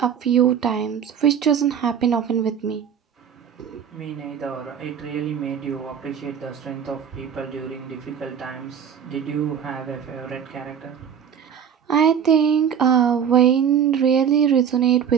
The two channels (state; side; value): quieter; left; 8.0 dB